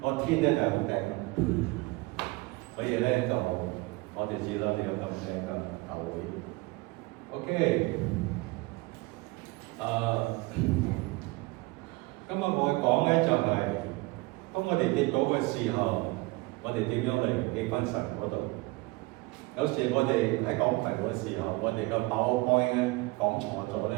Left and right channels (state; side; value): quieter; left; 23.2 dB